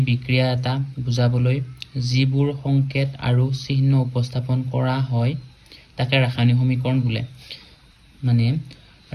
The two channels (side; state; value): both; identical; correlation 1.00